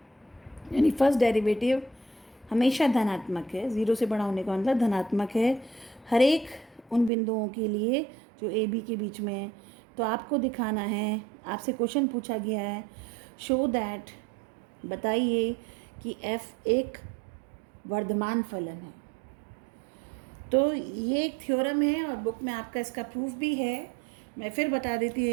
यानी फर्स्ट डेरिवेटिव हमेशा धनात्मक है, 0 से बड़ा होने का मतलब धनात्मक है हर एक उन बिंदुओं के लिए जो ए बी के बीच में है। तो आपको दिखाना है, आपसे क्वेश्चन पूछा गया है, शो दैट, बताइए कि f एक वर्धमान फलन है। तो ये एक थ्योरम है और बुक में आपका इसका प्रूफ भी है। मैं फिर बता देती हूँ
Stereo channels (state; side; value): drops out; left; at 7.1 s